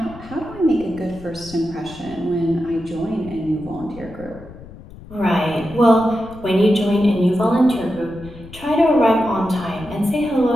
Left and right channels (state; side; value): noise; left; rumble, 17 dB below the sound